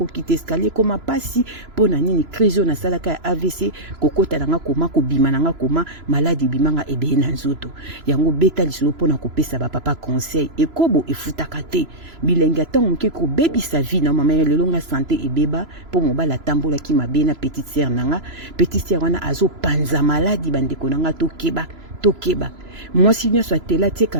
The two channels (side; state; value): left; late; 3.0 ms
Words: escalier koma pasi pona nini crise oyo nasalaka ya AVC kokota nanga koma kobima nanga koma maladi bimanga ebele na nzoto yango beta lisolo pona kopesa papa conseil ekobo efutaka te bilenge atango moke kobebisa vie na mama lelo nga santé ebeba po mobala tambola ki mabe na petite sœur nanga petite sœur wana azopanza maladi bandeko nanga tokeba mwasi nyonso atela tie